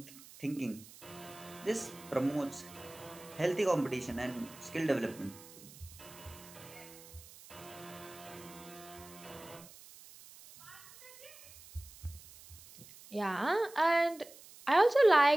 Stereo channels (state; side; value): noise; right; hiss, 19 dB below the sound